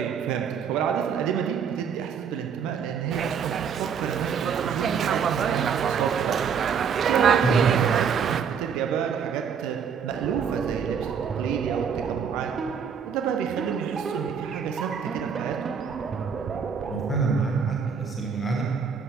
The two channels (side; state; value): left; quieter; 6.8 dB